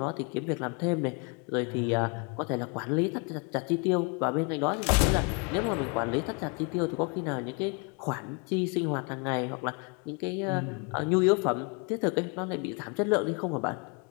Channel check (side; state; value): right; quieter; 32.9 dB